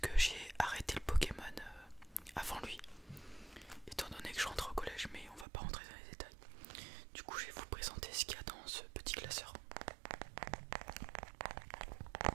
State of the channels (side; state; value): left; drops out; at 5.5 s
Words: j'ai arrêté le Pokémon avant lui. Étant donné que je rentre au collège, mais on va pas rentrer dans les détails. Du coup je vais vous présenter ce qu'il y a dans ce petit classeur.